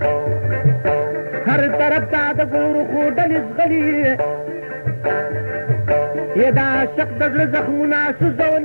هر طرف ته د ګورو خو ډلې ځغلي یہ دا عاشق د زړه زخمونه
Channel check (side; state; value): both; inverted; correlation -1.00